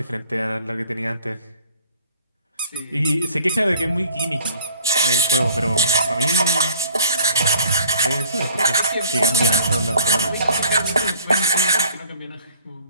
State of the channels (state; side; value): inverted; both; correlation -0.51